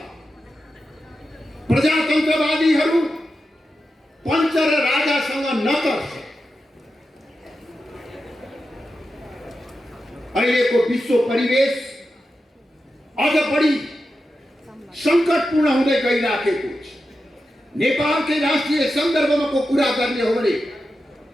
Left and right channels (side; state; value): both; normal; correlation 0.90